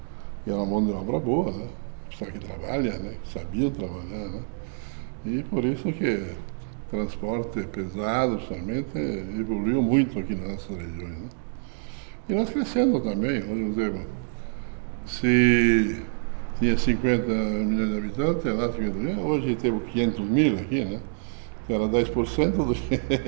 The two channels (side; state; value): left; silent; digital silence